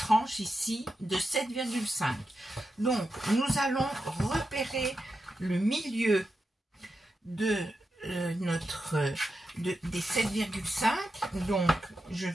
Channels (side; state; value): both; normal; correlation 0.88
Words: ici de 7,5. Donc, nous allons repérer le milieu de des 7,5. Donc, je